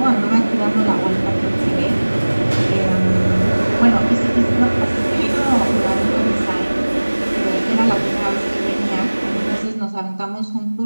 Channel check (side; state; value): both; inverted; correlation -1.00